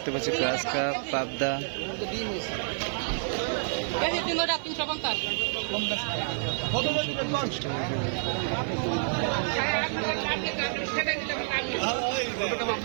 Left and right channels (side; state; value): left; silent; digital silence